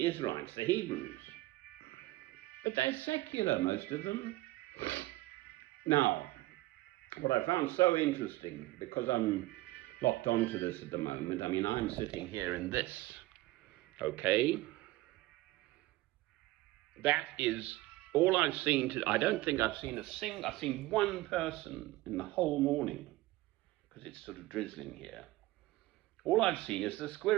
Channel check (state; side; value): quieter; left; 18.7 dB